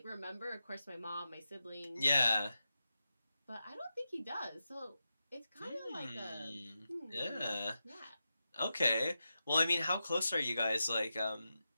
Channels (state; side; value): inverted; both; correlation -0.90